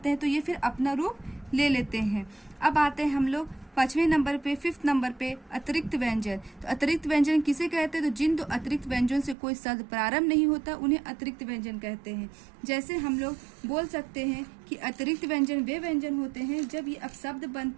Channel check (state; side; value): drops out; left; at 9.3 s